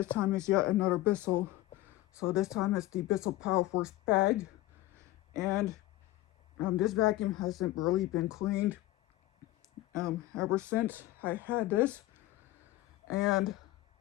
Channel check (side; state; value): right; quieter; 16.8 dB